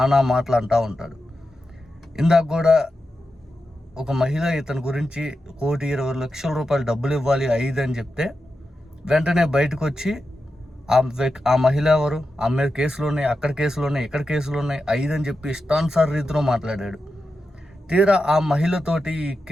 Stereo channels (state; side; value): normal; both; correlation 0.89